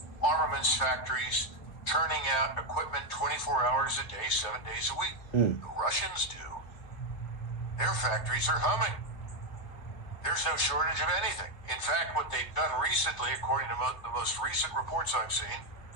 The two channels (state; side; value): late; right; 3.0 ms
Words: armaments factories, turning out equipment 24 hours a day, 7 days a week. The Russians do. Their factories are humming. There's no shortage of anything. In fact, what they've done recently, according to the most recent reports I've seen,